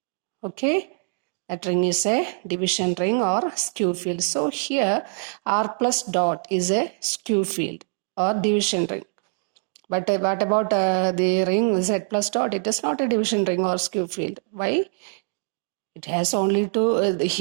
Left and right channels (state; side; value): silent; left; 63 dB below the other